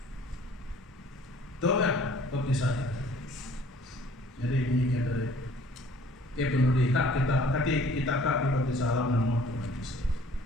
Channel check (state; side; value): normal; both; correlation 0.54